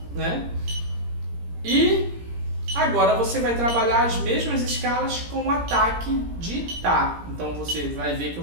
né? E agora você vai trabalhar as mesmas escalas com ataque de Tá. Então você vai ver que eu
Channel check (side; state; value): left; late; 17 ms